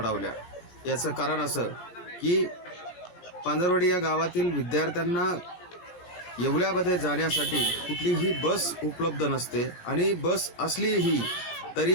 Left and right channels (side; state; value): right; late; 17 ms